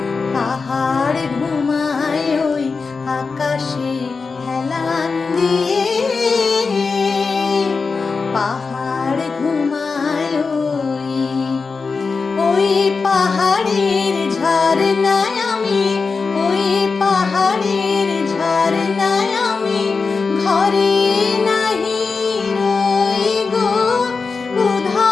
পাহাড় ঘুমায় ওই আকাশে হেলান দিয়ে পাহাড় ঘুমায় ওই পাহাড়ের ঝর্ণায় আমি ওই পাহাড়ের ঝর্ণায় আমি ঘরে নাহি রই গো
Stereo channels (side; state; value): right; quieter; 4.6 dB